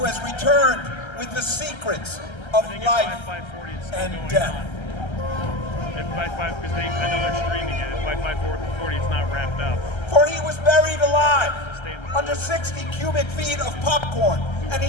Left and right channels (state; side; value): late; right; 1.3 ms